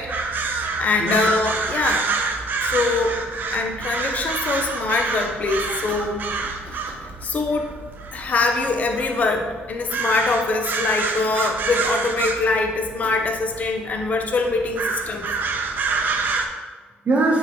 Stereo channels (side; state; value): both; normal; correlation 0.58